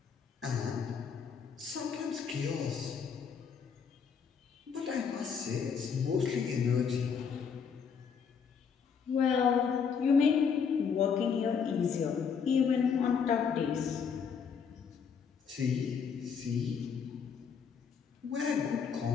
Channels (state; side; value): quieter; right; 6.5 dB